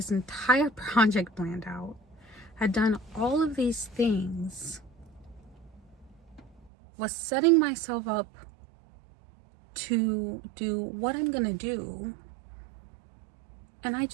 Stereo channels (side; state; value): left; drops out; at 6.7 s